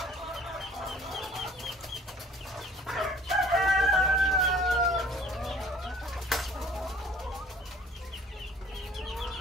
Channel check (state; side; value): normal; both; correlation 0.52